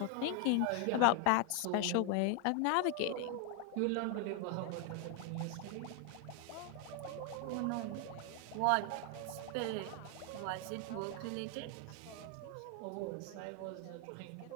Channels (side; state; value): both; different; correlation 0.01